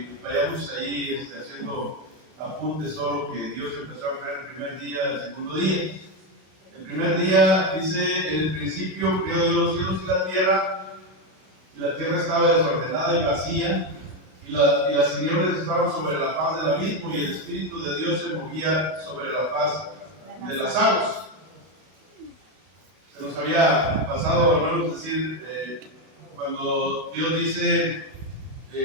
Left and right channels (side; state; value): left; late; 32 ms